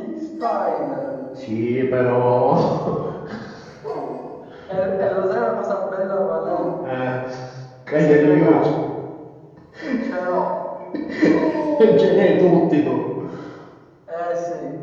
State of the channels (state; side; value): identical; both; correlation 1.00